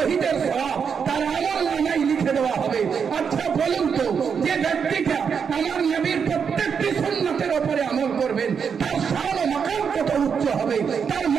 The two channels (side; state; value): left; quieter; 6.6 dB